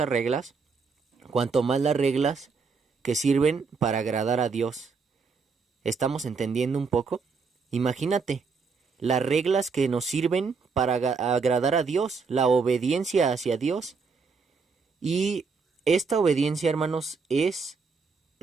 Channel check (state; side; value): quieter; left; 5.0 dB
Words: reglas, cuanto más las reglas que sirven para agradar a Dios. ¿Estamos entendiendo un poco? Imagínate, las reglas que nos sirven para agradar a Dios, la obediencia hacia Dios. Y esta obediencia, hermanos, es